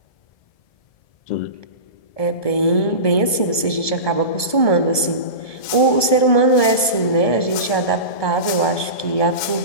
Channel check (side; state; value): right; late; 1.2 ms